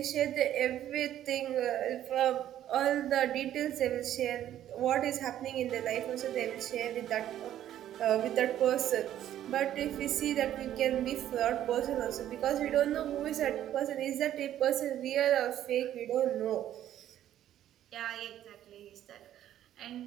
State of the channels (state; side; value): quieter; left; 11.7 dB